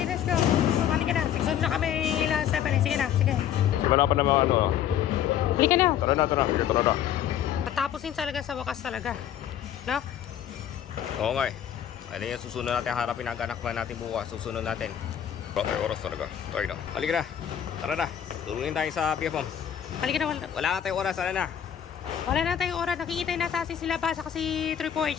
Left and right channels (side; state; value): right; quieter; 10.0 dB